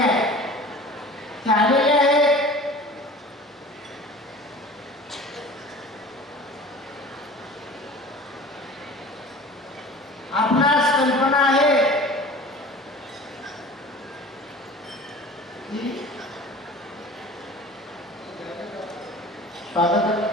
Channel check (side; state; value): both; normal; correlation 0.41